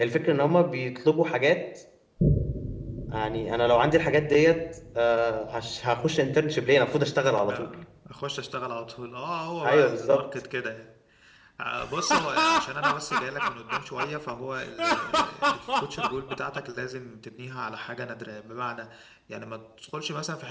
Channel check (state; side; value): identical; both; correlation 1.00